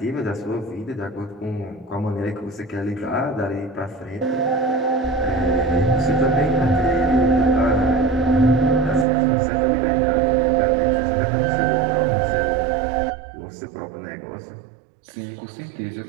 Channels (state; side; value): drops out; left; at 9.1 s